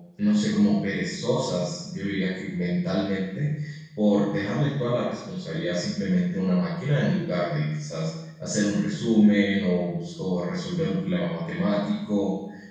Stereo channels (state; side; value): identical; both; correlation 1.00